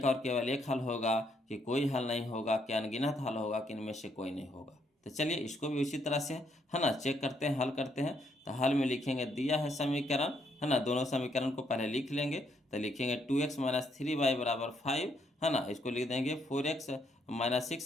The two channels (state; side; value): normal; both; correlation 0.73